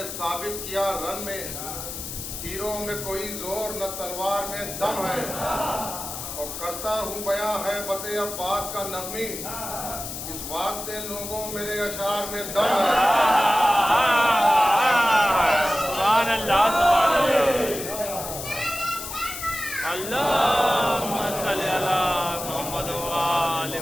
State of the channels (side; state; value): left; noise; hiss, 8 dB below the sound